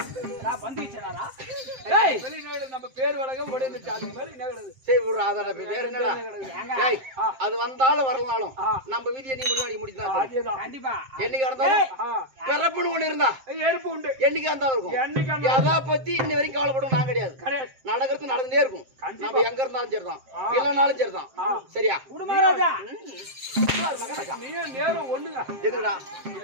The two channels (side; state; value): left; late; 7.6 ms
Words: நான் பந்து வச்சேனாரா? ஏய் வெளிநாடு நம்ம பேர் வழக்கம் ஓடிந்துச்சு. அது மேல என்ன கிடக்குது? சரி விடுறா அதோட வேற என்னடா? ஏய் அது வந்தாலும் வரலனாலும் நம்ம வீதியை நீ முடிவாடி முடிச்சா அதேதான் கண்டிப்பா. என்னைக்கு இருந்தாலும் பிறப்புன்னு ஒண்ணு இருந்தா எருப்பு உண்டு. என்னைக்கு இருந்தாலும் இருக்கும். எதா பத்தி இன்ன வரைக்கும் கவலைப்படும் நான் கிடையாது. நடக்கிறது நடந்துட்டே இருக்கும். நம்ம எங்க இருந்தாலும் சரிதான் இல்லனாலும் சரிதான். சரியா மகாராஜா? நீ நேரம் ஒண்ணுங்க. எதுடா